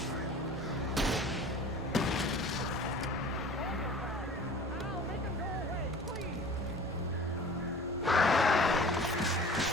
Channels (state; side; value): normal; both; correlation 0.43